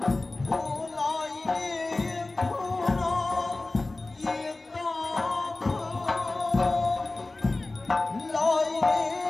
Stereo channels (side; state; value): right; quieter; 3.1 dB